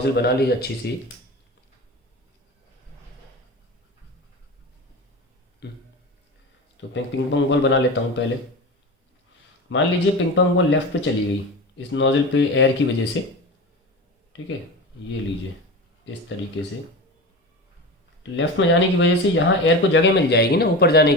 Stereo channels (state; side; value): normal; both; correlation 0.28